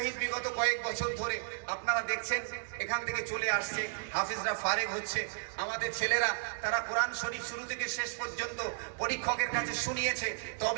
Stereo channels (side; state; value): left; silent; digital silence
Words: বিগত কয়েক বছর ধরে আপনারা দেখছেন এখান থেকে চলে আসছে, হাফিজরা ফারেক হচ্ছে। আমাদের ছেলেরা তারা কোরআন শরীফ শুরু থেকে শেষ পর্যন্ত পরীক্ষকের কাছে শুনিয়েছে,